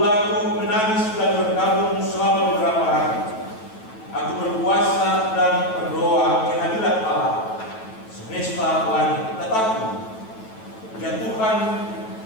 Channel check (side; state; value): right; late; 9.1 ms